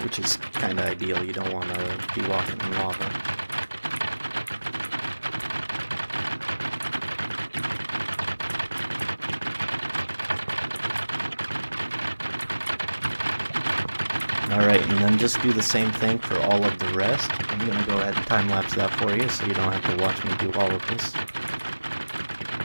Which is kind of ideal, you don't want to be walking in lava. Alright, and then just do the same thing for all of the rest. I'm going to go ahead and time-lapse that for you so you don't have to watch me do all of this.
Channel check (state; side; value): inverted; both; correlation -1.00